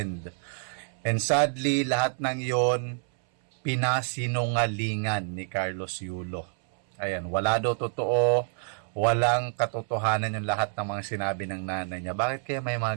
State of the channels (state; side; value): silent; left; 60 dB below the other